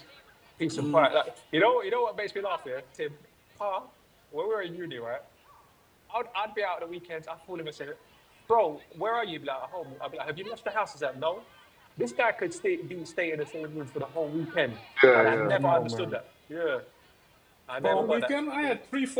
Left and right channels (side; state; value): both; identical; correlation 1.00